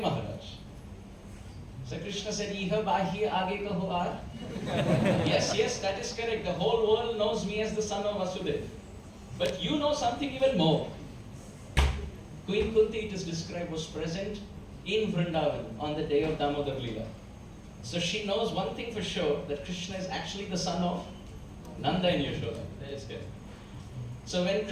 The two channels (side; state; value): both; identical; correlation 1.00